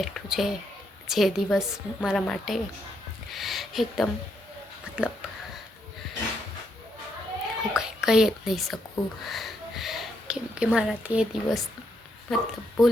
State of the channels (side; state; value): both; normal; correlation 0.77